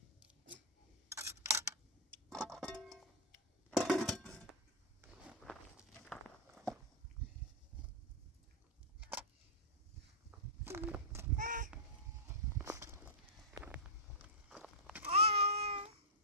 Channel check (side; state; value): both; normal; correlation -0.09